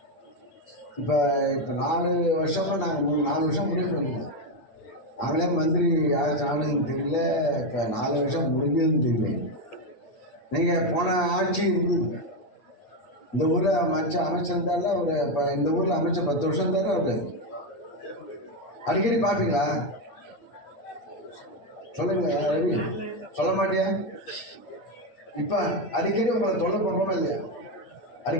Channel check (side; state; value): right; late; 8.6 ms